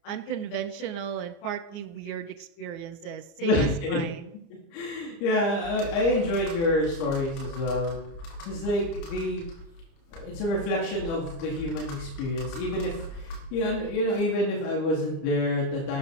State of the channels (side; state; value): right; late; 30 ms